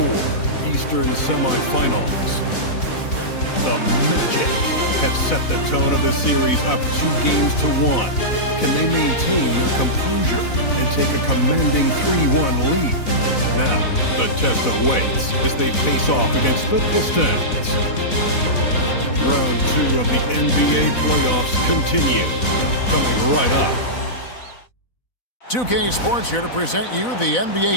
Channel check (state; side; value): late; right; 4.0 ms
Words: Eastern Semifinals. The Magic have set the tone of the series up 2-1. Can they maintain their composure and take a commanding 3-1 lead? Now, the test awaits as they face off against the Pistons. Round 2 of the NBA playoffs continue. Coming right up. 2K Sports here to present you the NBA